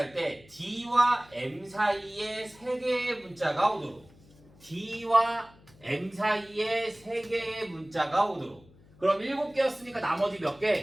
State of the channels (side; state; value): left; noise; hum, 26 dB below the sound